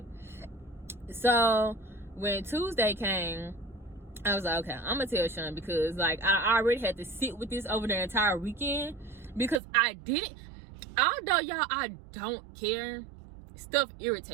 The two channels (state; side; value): drops out; left; at 9.6 s